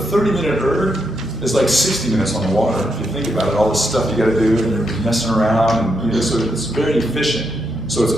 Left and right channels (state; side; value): normal; both; correlation 0.81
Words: erg is like 60 minutes on the water. If you think about it, all the stuff you got to do, and you're messing around, and so it's very efficient. So it's